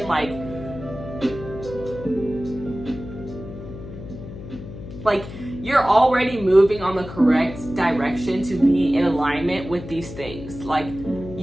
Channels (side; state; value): left; noise; hum, 12 dB below the sound